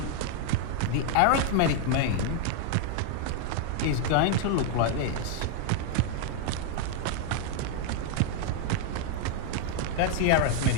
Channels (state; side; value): different; both; correlation 0.00